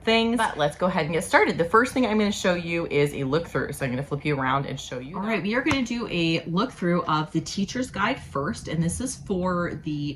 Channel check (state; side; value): identical; both; correlation 1.00